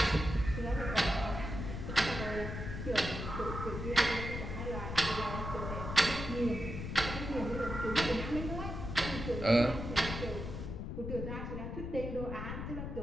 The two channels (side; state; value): left; noise; rumble, 5 dB below the sound